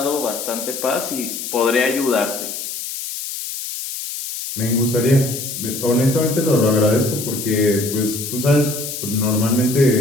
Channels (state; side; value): noise; left; hiss, 7 dB below the sound